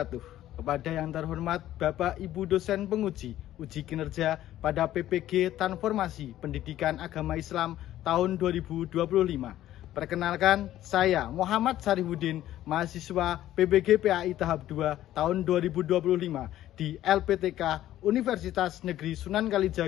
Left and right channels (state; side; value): quieter; right; 13.3 dB